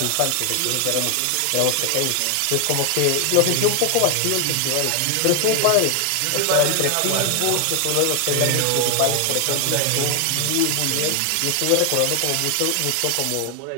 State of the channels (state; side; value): different; both; correlation 0.00